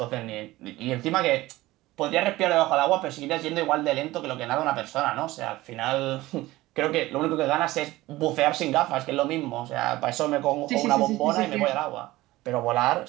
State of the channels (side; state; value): left; quieter; 18.1 dB